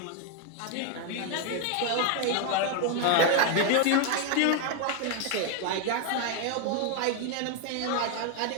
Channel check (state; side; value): different; both; correlation 0.01